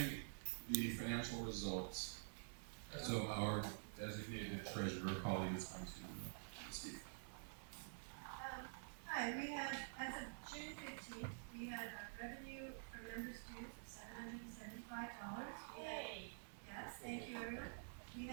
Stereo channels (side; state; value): left; silent; digital silence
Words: the financial results. So our designated treasurer, Polly, is going to speak. Hi, we had, as of June 15th, we had revenue from members' dues of $775. Yes, thank you, everyone. We